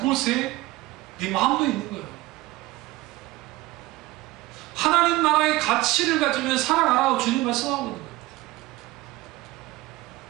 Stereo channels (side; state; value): left; quieter; 18.9 dB